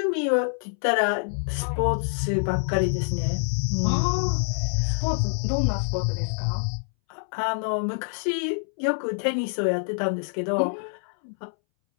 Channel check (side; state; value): right; silent; 61 dB below the other